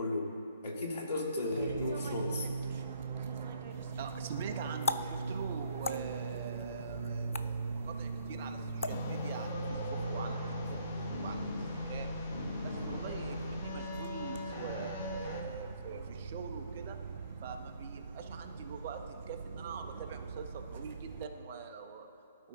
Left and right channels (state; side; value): inverted; both; correlation -0.66